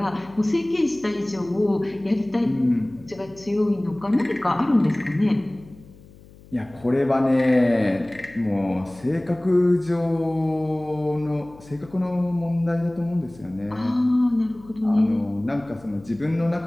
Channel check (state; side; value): noise; left; hum, 23 dB below the sound